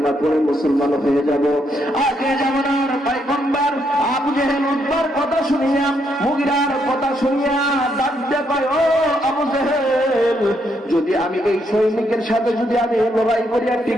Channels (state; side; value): normal; both; correlation 0.76